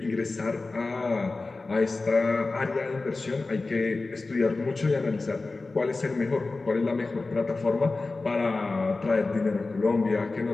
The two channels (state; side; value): quieter; right; 3.5 dB